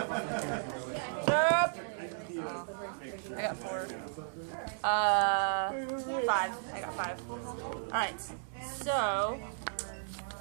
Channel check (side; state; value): left; silent; digital silence